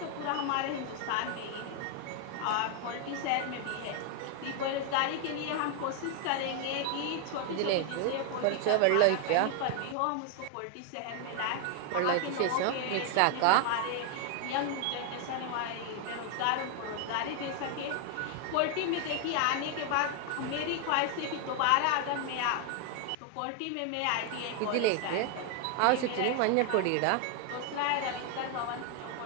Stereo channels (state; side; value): different; both; correlation 0.00